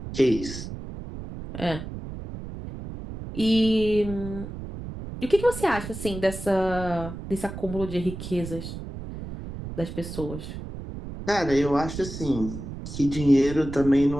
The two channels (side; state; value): right; noise; rumble, 9 dB below the sound